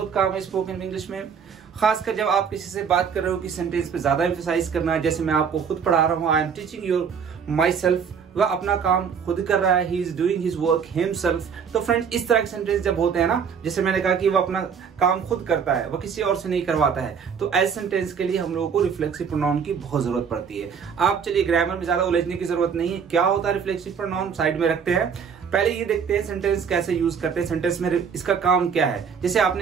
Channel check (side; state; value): left; quieter; 6.7 dB